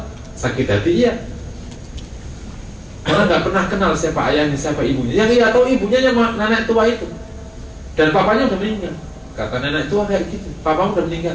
sakit hati iya. Karena nggak pernah kenal siapa ayahnya, siapa ibunya. Yang ia tahu ibunya yang nenek tua itu, dan papanya udah meninggal. Kata nenek tua kayak gitu, papamu udah meninggal,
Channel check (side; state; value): both; identical; correlation 1.00